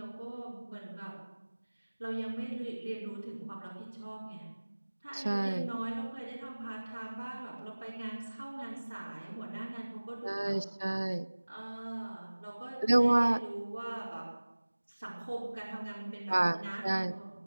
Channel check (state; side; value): inverted; both; correlation -1.00